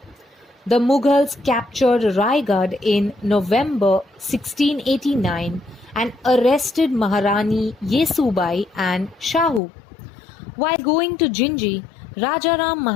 The Mughals captured Raigad in November 1689 and arrested Maharani Yesubai and Shahu. While going to Jinji, Rajaram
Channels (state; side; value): drops out; right; at 9.6 s